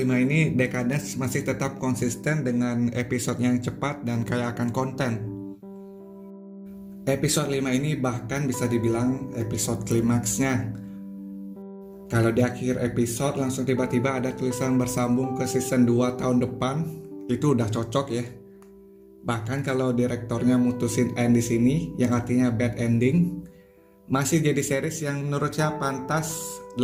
ini, Decadence masih tetap konsisten dengan episode yang cepat dan kaya akan konten. Episode 5 ini bahkan bisa dibilang episode klimaksnya. Kalau di akhir episode langsung tiba-tiba ada tulisan bersambung ke season 2 tahun depan, itu udah cocok ya. Bahkan kalau direktornya mutusin end di sini, yang artinya bad ending, masih jadi series yang menurut saya pantas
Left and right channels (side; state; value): both; identical; correlation 1.00